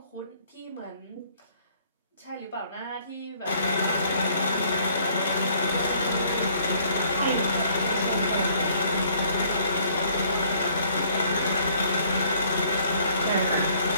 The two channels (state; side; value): inverted; both; correlation -0.61